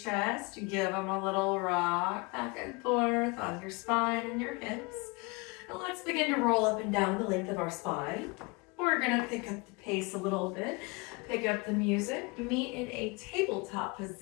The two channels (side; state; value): right; quieter; 28.0 dB